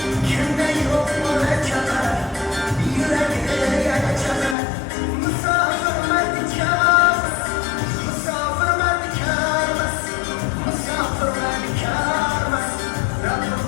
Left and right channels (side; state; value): right; drops out; at 4.5 s